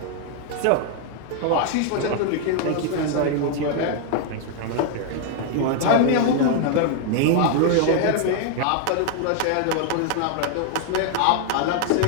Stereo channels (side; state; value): both; different; correlation 0.00